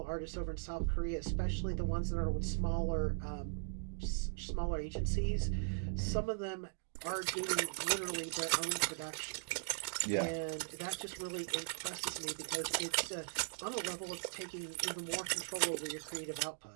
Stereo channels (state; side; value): silent; left; digital silence